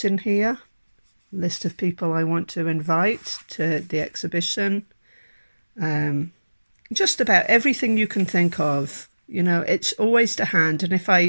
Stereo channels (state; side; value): inverted; both; correlation -1.00